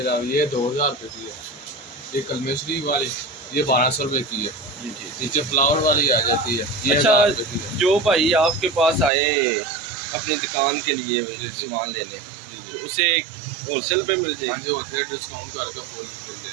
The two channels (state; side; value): drops out; left; at 9.1 s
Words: ये 2000 रुपये की है। ये कलमेश्वरी वाली ये 1200 रुपये की है जी ठीक। नीचे फ्लावर वाली आ जाती है ये अच्छा, 1000 रुपये की है। जो भाई आपके पास आए अपनी दुकान के लिए सामान लेने, तो उसे होलसेल पे मिल जाएगी? हाँ जी, होलसेल डिस्काउंट करके फुल मिल